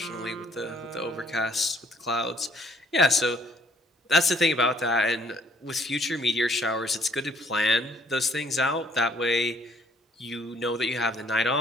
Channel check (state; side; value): normal; both; correlation 0.63